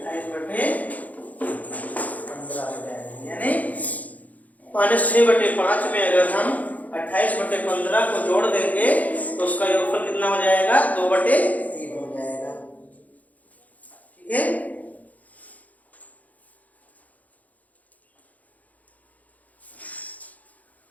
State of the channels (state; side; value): late; right; 0.076 ms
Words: 28/15 हो जाएगी। यानी -6/5 में अगर हम 28/15 को जोड़ देंगे तो उसका योगफल कितना हो जाएगा, 2/3 हो जाएगा। ठीक है,